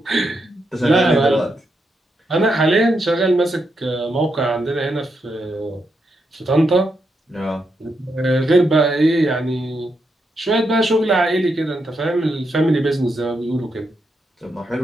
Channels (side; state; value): both; normal; correlation 0.82